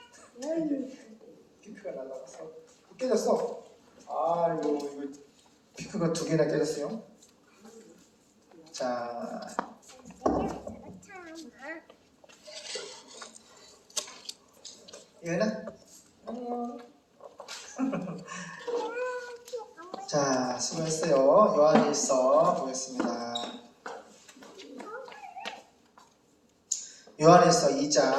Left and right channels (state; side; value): identical; both; correlation 1.00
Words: 피크가 날라갔어. 깨졌어. 아이고 이거 피크가 2개나 깨졌어요. 자, 이거는 자, 수고했어요. 요한일서 보겠습니다. 요한일서